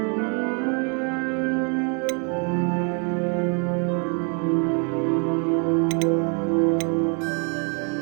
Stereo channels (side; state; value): left; quieter; 38.3 dB